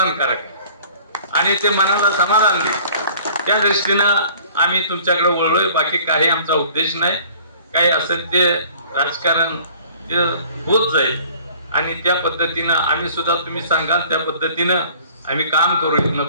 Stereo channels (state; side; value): inverted; both; correlation -0.51